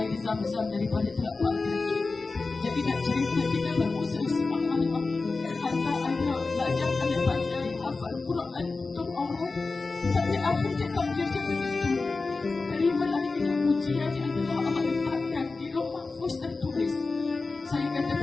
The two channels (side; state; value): right; quieter; 3.8 dB